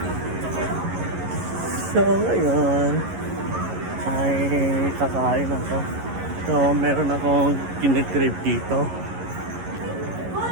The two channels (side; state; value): left; late; 11 ms